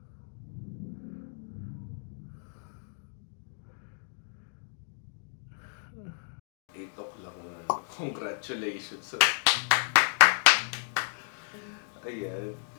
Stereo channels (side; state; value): right; silent; digital silence